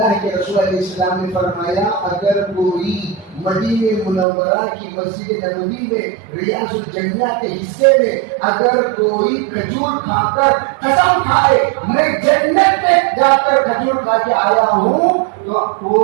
کے رسول علیہ السلام نے فرمایا اگر کوئی مدینہ منورہ کی مسجد نبوی میں ریاض الجنہ کے حصے میں اگر کوئی کھجور کھا کر قسم کھائے میں جنت میں جا کر کھجور کھا کے آیا ہوں تو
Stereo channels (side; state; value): left; drops out; at 4.2 s